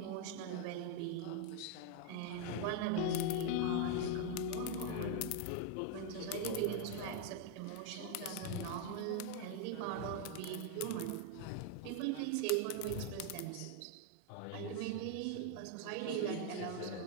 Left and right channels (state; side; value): different; both; correlation 0.00